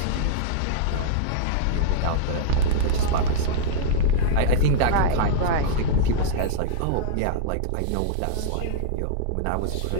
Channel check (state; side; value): different; both; correlation -0.02